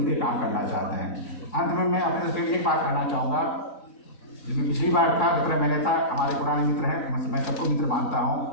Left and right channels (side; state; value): right; late; 4.0 ms